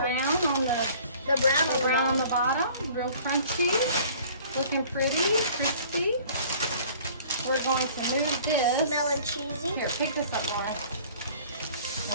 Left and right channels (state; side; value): inverted; both; correlation -0.50